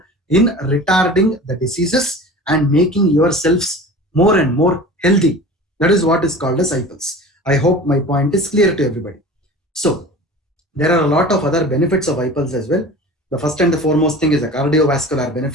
in retarding the diseases and making yourselves more and more healthy. That is what is called as iPulse. I hope my point is clear to everybody. So, there are a lot of other benefits of iPulse as well. The first and the foremost thing is a cardiovascular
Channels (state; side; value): normal; both; correlation 0.38